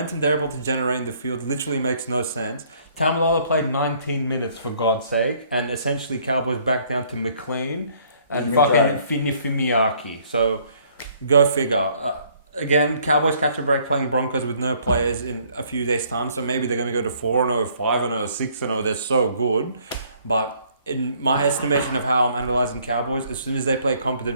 they're able to generate in the field literally makes no sense. Tamalolo played 19 minutes, for God's sake, and essentially Cowboys back down to McLean and fucking Fimiaki. So, go figure. Again, Cowboys catch a break playing Broncos with no players in a few days' time, so maybe they're going to go to 4-0, 5-0, 6-0. They're so good. But in my estimation of how I'm analysing Cowboys, as soon as they play a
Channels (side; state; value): both; inverted; correlation -0.62